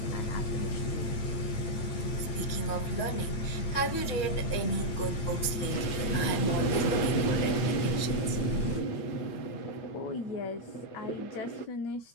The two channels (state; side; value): late; right; 8.6 ms